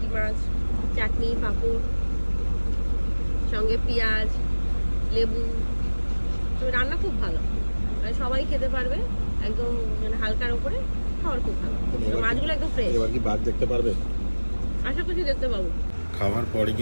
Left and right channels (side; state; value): both; inverted; correlation -1.00